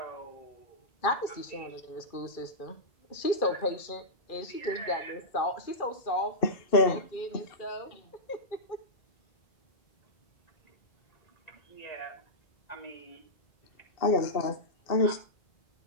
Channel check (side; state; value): right; late; 2.4 ms